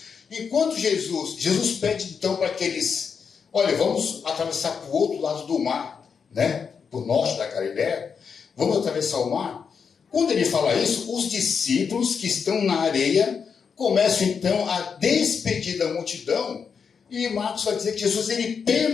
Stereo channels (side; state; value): right; quieter; 6.2 dB